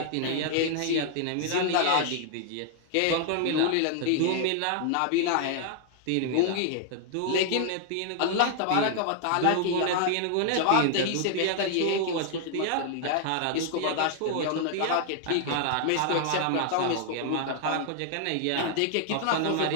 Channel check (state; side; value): different; both; correlation 0.00